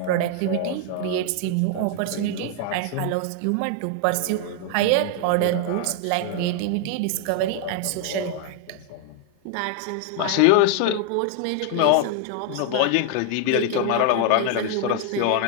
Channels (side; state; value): both; different; correlation 0.00